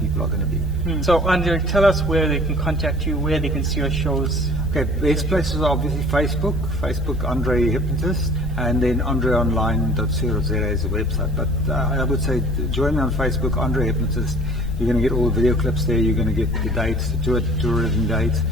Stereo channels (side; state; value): both; normal; correlation 0.49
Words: are going to be. So, Andre, tell us where they can contact you, where they can see your shows. Okay, best places are obviously Facebook Andre Hypnotist, and then andreonline.co.za is a website. But I would say join me on Facebook, Andre Hypnotist. You're going to get all the video clips there. You're going to get the dates, the tourism dates.